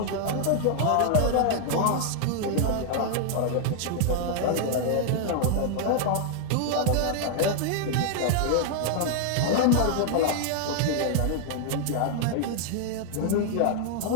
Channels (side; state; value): both; different; correlation 0.00